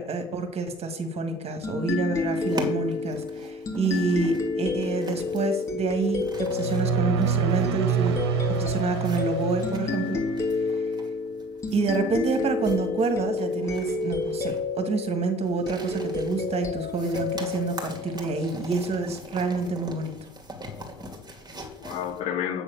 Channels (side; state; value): both; normal; correlation 0.48